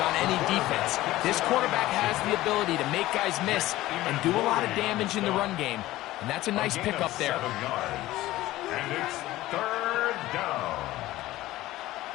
any defense. This quarterback has the ability to make guys miss and do a lot of damage in the run game. And that's a nice pickup there. 7 yards. And it's 3rd down.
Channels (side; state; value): right; quieter; 16.5 dB